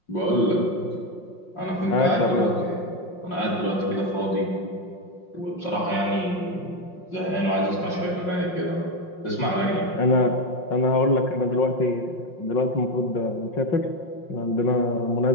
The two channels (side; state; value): right; late; 5.6 ms